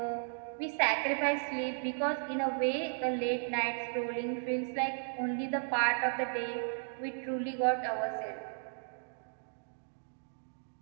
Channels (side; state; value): left; silent; digital silence